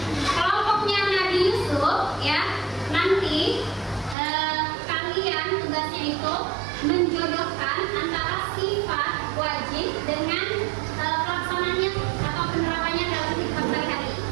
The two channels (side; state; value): left; drops out; at 4.2 s